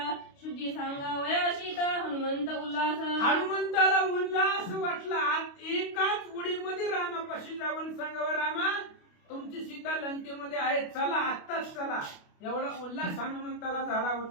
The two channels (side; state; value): right; late; 29 ms